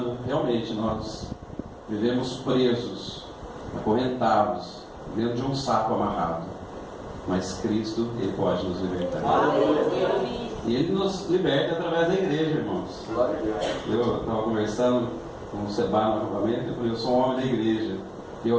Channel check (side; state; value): both; identical; correlation 1.00